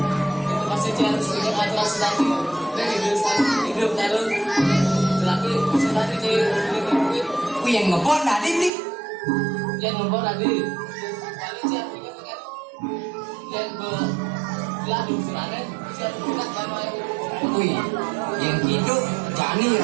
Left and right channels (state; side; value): drops out; left; at 8.7 s